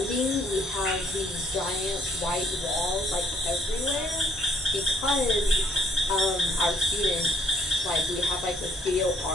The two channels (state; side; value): normal; both; correlation 0.62